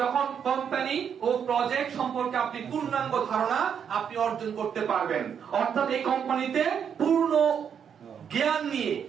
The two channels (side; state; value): left; quieter; 7.7 dB